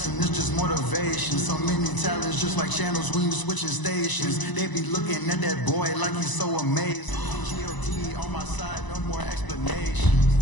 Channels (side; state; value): right; late; 1.0 ms